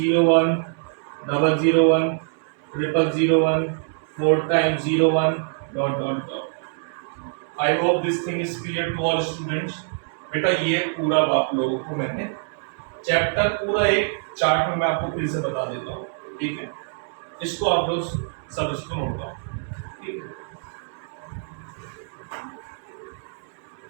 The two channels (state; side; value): silent; left; digital silence